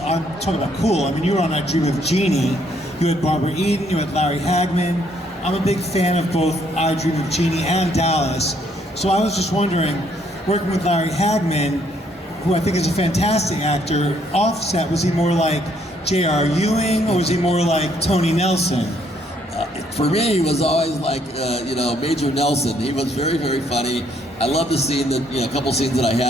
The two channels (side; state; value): both; normal; correlation 0.69